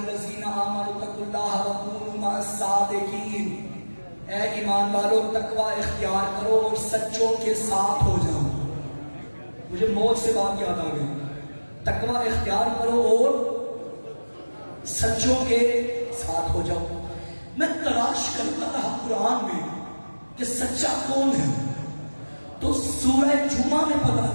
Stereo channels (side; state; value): both; inverted; correlation -1.00